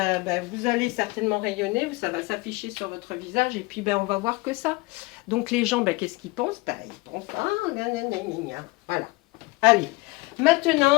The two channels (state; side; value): quieter; right; 23.5 dB